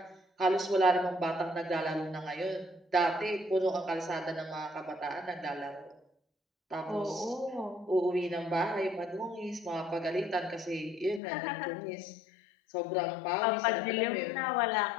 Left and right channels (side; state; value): right; drops out; at 11.2 s